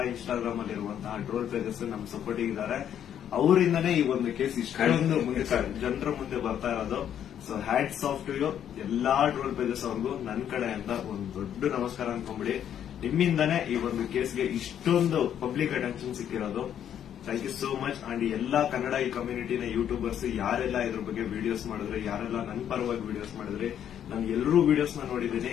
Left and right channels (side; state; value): right; quieter; 9.7 dB